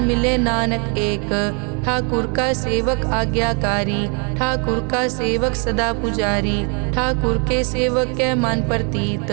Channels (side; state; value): left; quieter; 36.6 dB